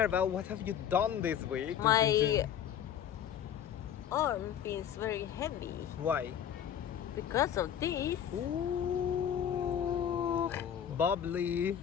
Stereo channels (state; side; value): quieter; right; 9.3 dB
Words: what have you done this week? My arm feels very heavy Why? because of this. Ooh, bubbly.